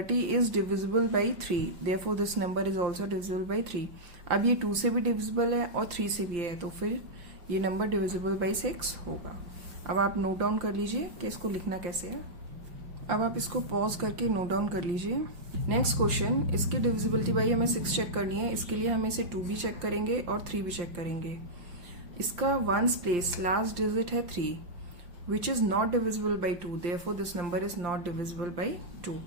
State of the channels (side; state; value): left; late; 5.8 ms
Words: is divisible by 3, therefore this number is also divisible by 3। अब ये 2 से भी डिविजिबल है और 3 से भी है तो फिर ये नंबर डिविजिबल बाई 6 होगा। अब आप नोट डाउन कर लीजिए कि इसको लिखना कैसे है। अब आप इसको पॉज करके नोट डाउन कर लीजिए। नेक्स्ट क्वेश्चन, इसकी डिविजिबिलिटी बाई हमें 6 चेक करनी है। इसके लिए हम इसे 2 भी चेक करेंगे और 3 भी चेक करेंगे। इसका वंस प्लेस लास्ट डिजिट है 3 विच is not divisible by 2, therefore this number is not divisible by 2।